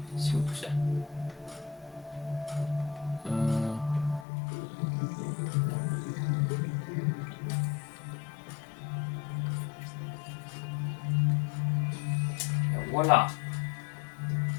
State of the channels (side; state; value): right; drops out; at 4.2 s